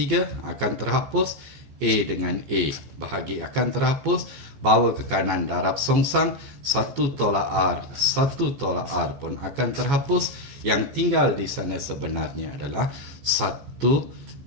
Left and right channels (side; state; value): left; late; 14 ms